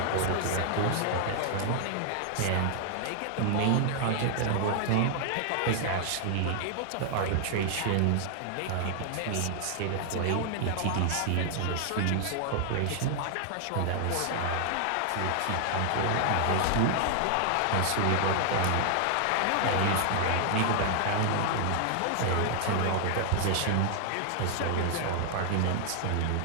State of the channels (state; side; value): different; both; correlation 0.00